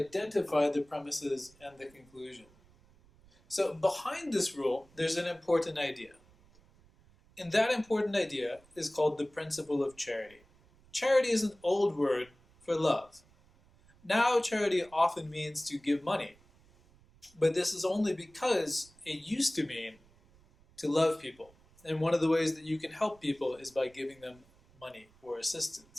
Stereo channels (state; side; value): noise; right; rumble, 28 dB below the sound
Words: the premises and the conclusion. So behind this rule, there's an important idea. And that important idea is called the principle of charity. Charity is an old word for love. Now charity often means to give money, but this is only because it used to mean to love people. And one of the ways that you can help people is by giving them money or